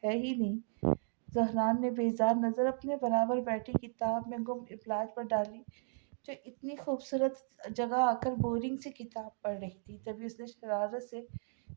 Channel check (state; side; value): silent; left; digital silence